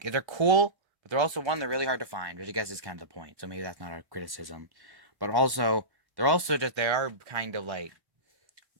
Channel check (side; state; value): left; late; 1.1 ms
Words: they're cool, but they're also one they're really hard to find, which I guess is kind of the point. So maybe that's not a criticism, but also they are kind of like